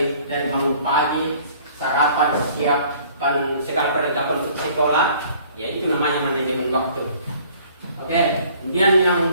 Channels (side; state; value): both; inverted; correlation -0.55